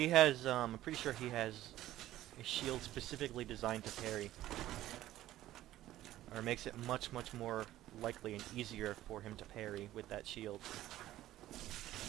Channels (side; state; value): left; quieter; 14.3 dB